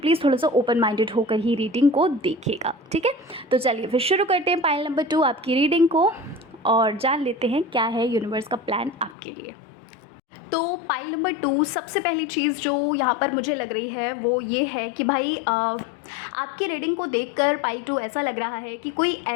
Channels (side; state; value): right; drops out; at 9.2 s